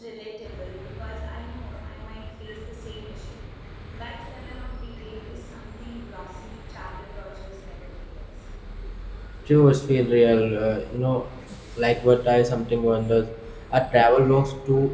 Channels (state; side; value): identical; both; correlation 1.00